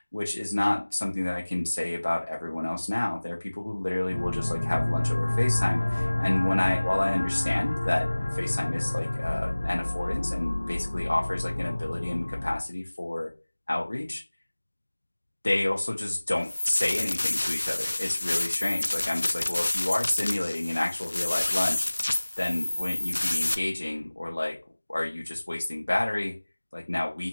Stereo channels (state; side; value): inverted; both; correlation -1.00